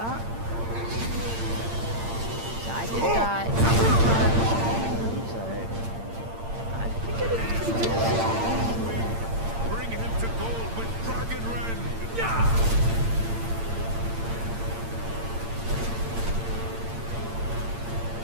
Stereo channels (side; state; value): left; late; 8.8 ms